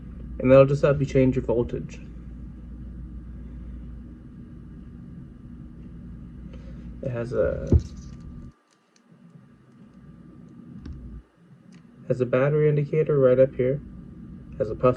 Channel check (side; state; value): both; identical; correlation 1.00